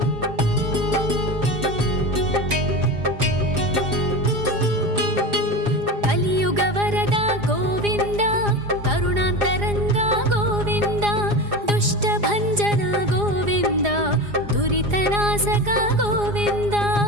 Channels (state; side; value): late; left; 4.9 ms